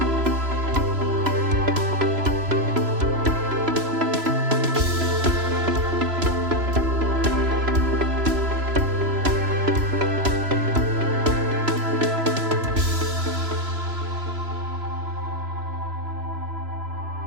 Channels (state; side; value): late; left; 3.0 ms